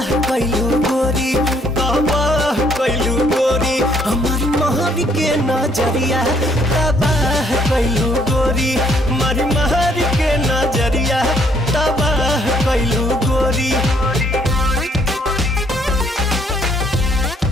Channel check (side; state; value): both; normal; correlation 0.66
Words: कैलू गोरी तबाह कैलू गोरी हमारी महर के नजरिया तबाह कैलू गोरी हमारी महर के नजरिया तबाह कैलू गोरी।